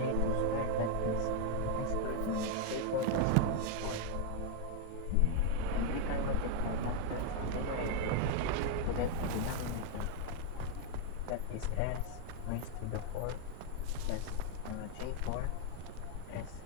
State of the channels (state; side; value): different; both; correlation 0.00